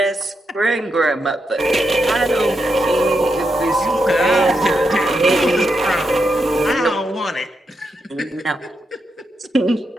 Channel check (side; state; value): both; normal; correlation 0.84